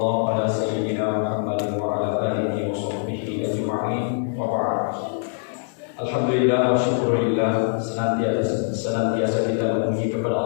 ala sayyidina Muhammad wa ala alihi wa sahbihi ajma'in. Wa ba'd. Alhamdulillah wa syukurillah, senantiasa kita memuji kepada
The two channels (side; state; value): right; silent; digital silence